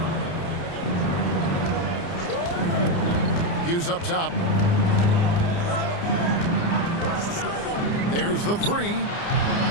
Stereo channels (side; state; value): right; late; 29 ms